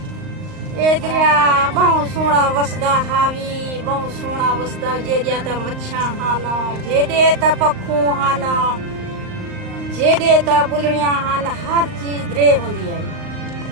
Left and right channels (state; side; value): late; left; 38 ms